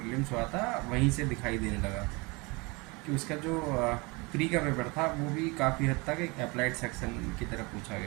हुआ था वहीं से दिखाई देने लगा कि उसका जो प्री का पेपर था वो भी काफ़ी हद तक एक अप्लाइड सेक्शन की तरफ पूछा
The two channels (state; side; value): quieter; left; 27.0 dB